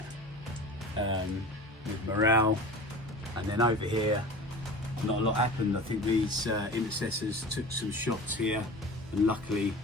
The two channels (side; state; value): both; normal; correlation 0.37